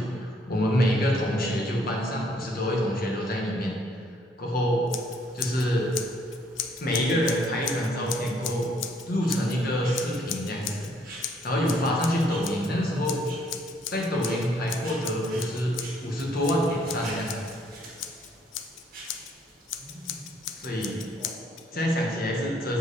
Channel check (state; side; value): normal; both; correlation 0.66